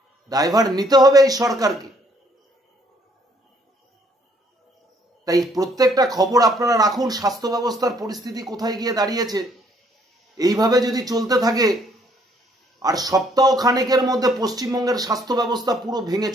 দায়ভার নিতে হবে এই সরকারকে। তাই প্রত্যেকটা খবর আপনারা রাখুন, স্বাস্থ্য ব্যবস্থার পরিস্থিতি কোথায় গিয়ে দাঁড়িয়েছে। এইভাবে যদি চলতে থাকে আর সপ্তাহ খানেকের মধ্যে পশ্চিমবঙ্গের স্বাস্থ্য ব্যবস্থা পুরো ভেঙে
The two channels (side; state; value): both; normal; correlation 0.65